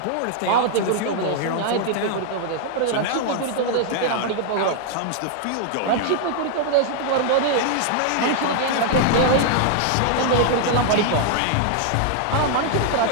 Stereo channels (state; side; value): different; both; correlation 0.00